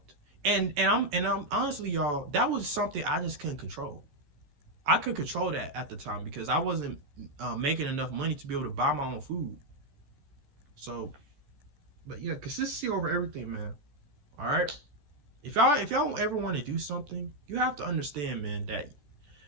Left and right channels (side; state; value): left; late; 14 ms